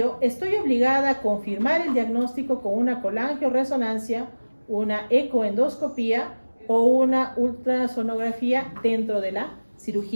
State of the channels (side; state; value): both; inverted; correlation -1.00